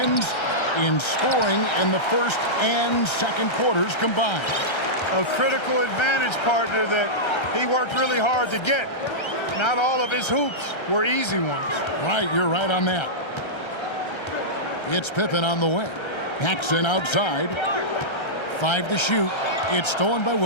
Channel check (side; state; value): right; late; 1.3 ms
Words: in scoring in the first and second quarters combined. A critical advantage partner that he worked really hard to get. Not all of his hoops were easy ones. Right, you're right on that. It's Pippen on the wing. Paxson outside. 5 to shoot. It's stolen by